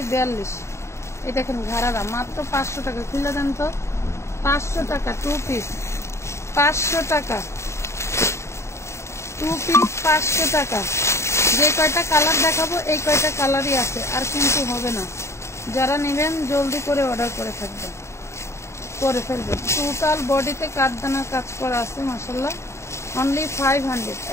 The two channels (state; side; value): late; right; 0.13 ms